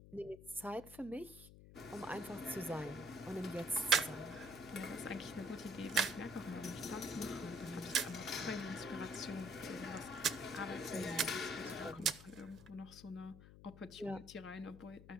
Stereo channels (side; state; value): left; noise; hum, 16 dB below the sound